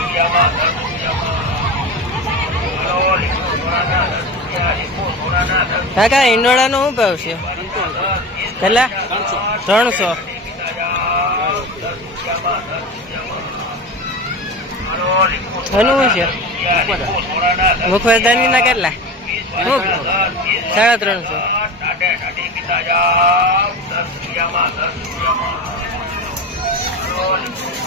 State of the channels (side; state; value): both; normal; correlation 0.27